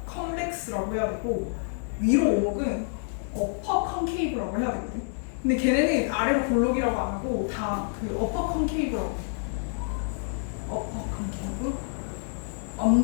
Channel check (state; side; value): silent; right; 60 dB below the other